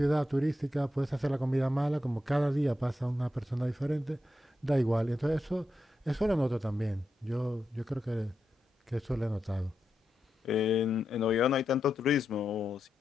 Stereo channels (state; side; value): normal; both; correlation 0.87